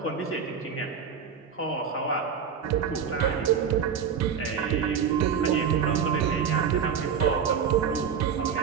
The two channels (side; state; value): left; quieter; 7.1 dB